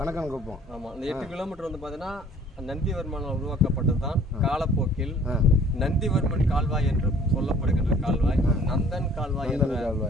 ஆமாம், இந்த 8 கிலோமீட்டர் வந்து பார்த்தீங்கன்னா நந்திவர்மனால் உருவாக்கப்பட்டது தான். காலப்போக்கில் நந்திவர்மன் கால்வாய் என்று சொல்லப்படுகின்ற கால்வாய் நந்தன் கால்வாய் என்ற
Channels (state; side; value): normal; both; correlation 0.54